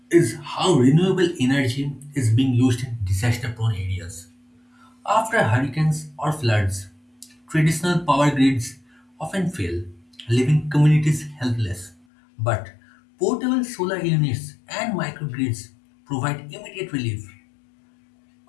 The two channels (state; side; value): drops out; right; at 12.0 s